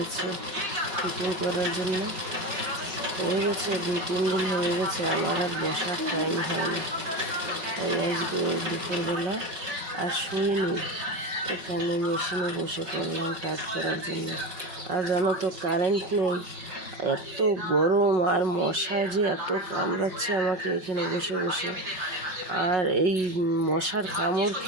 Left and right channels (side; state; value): left; late; 5.4 ms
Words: ফিটিং করার জন্য, হয়ে গেছে 2-3 দিন হয়ে গেছে, আমার আর বসার টাইম হয় না। তাই আজকে দুপুরবেলা আর শুইনি, এখানে মেশিনে বসে পড়লাম কাজ করার জন্য। আর জানো তো কারেন্ট নেই, এত গরম আর মশা যে এত কামড়াচ্ছে আমাকে এখানে বসে বসে। আর এই মশার কামড়